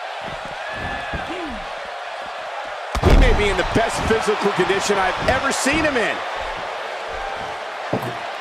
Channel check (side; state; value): both; identical; correlation 1.00